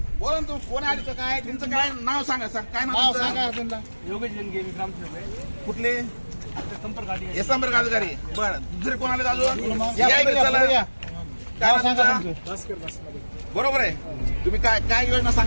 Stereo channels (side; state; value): both; inverted; correlation -1.00